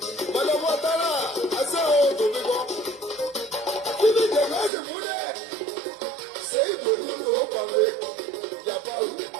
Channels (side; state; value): left; drops out; at 4.7 s